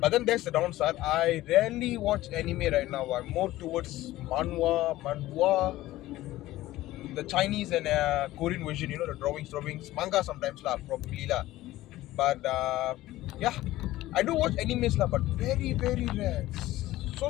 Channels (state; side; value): quieter; right; 16.3 dB